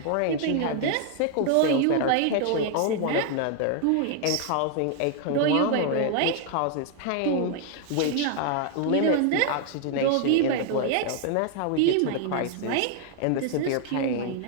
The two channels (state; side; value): different; both; correlation 0.00